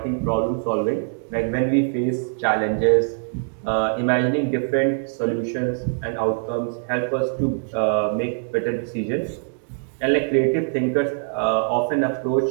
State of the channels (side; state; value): left; silent; digital silence